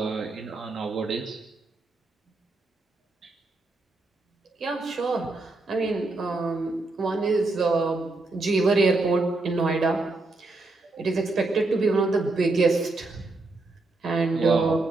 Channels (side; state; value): left; quieter; 3.2 dB